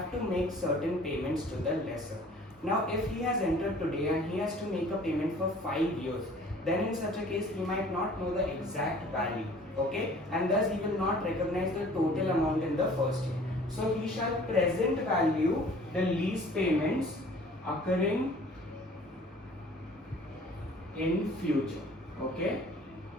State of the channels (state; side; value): normal; both; correlation 0.50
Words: to make certain payments to the lessor. Now if he has entered today and he has to make a payment for 5 years, then in such a case he might not know the exact value, okay, and thus he will not recognize the total amount in the first year. So he shall present value the lease payments occurring in future, okay.